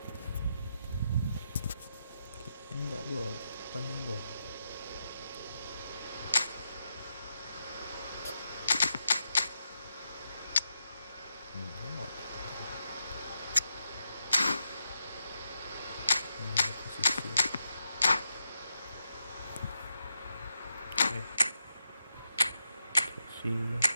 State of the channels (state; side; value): inverted; both; correlation -0.83